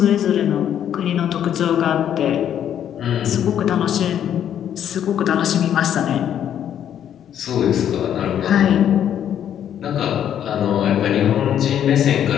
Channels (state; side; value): quieter; right; 9.9 dB